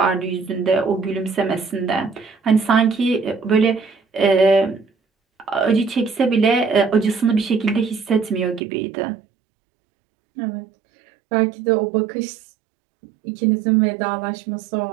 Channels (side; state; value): left; drops out; at 8.6 s